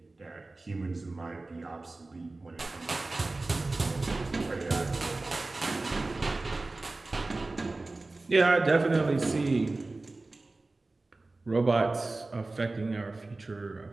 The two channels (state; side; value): quieter; left; 3.2 dB